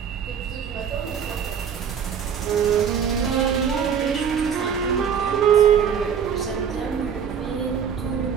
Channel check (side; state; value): left; quieter; 7.5 dB